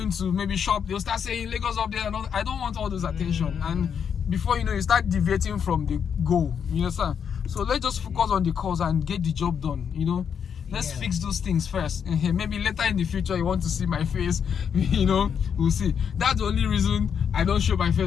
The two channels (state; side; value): quieter; right; 7.5 dB